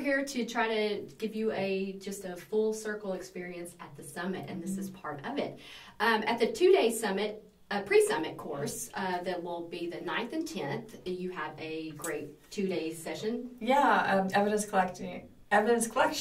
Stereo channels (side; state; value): both; identical; correlation 1.00